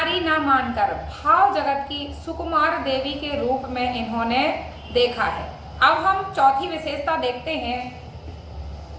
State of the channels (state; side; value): identical; both; correlation 1.00